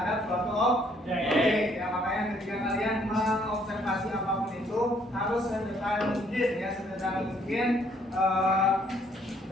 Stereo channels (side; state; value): both; normal; correlation 0.66